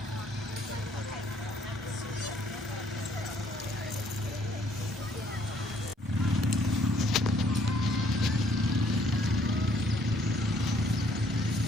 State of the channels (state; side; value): normal; both; correlation 0.64